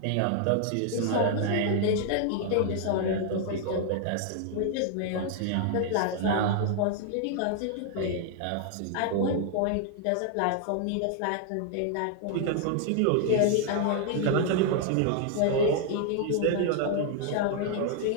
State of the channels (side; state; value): both; different; correlation 0.00